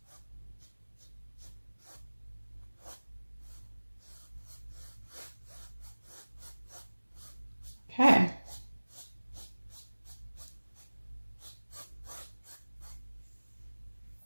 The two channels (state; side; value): inverted; both; correlation -1.00